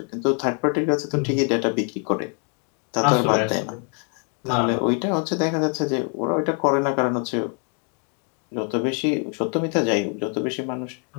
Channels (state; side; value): quieter; right; 38.7 dB